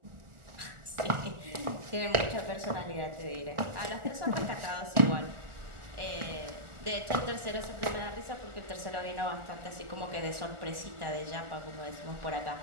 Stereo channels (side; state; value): left; late; 1.4 ms